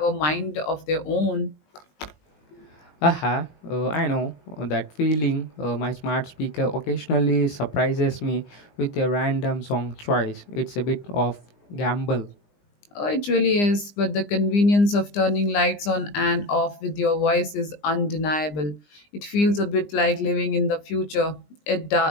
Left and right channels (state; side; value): late; right; 20 ms